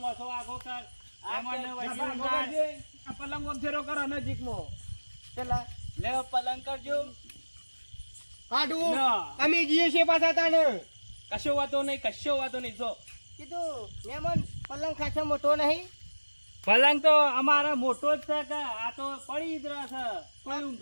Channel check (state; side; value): inverted; both; correlation -1.00